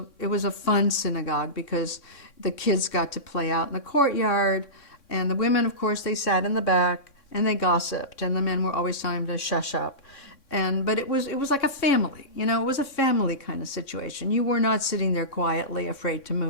fun synagogue because the kids got to play out in the courtyard, and the women, of course, they sat in the back and they gossiped, and the men were always telling them to shush up. But it was like a family, you know, it was a family kind of situation. You were not sitting there quietly afraid to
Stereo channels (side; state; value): right; late; 3.6 ms